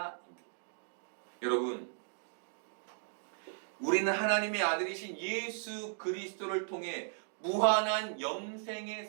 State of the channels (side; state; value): left; silent; digital silence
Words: 여러분, 우리는 하나님의 아들이신 예수 그리스도를 통해 무한한 영생의